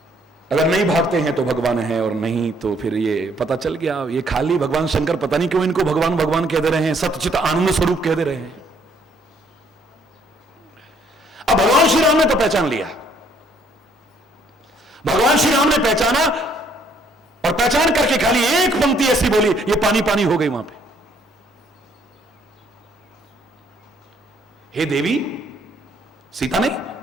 अगर नहीं भागते हैं तो भगवान है, और नहीं तो फिर ये पता चल गया ये खाली भगवान शंकर पता नहीं क्यों इनको भगवान भगवान कह दे रहे हैं, सतचित आनंद स्वरूप कह दे रहे हैं। अब भगवान श्री राम ने तो पहचान लिया। भगवान श्री राम ने पहचाना और पहचान करके खाली एक पंक्ति ऐसी बोली, ये पानी पानी हो गई वहां पे। हे देवी, सीता नहीं,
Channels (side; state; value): both; normal; correlation 0.65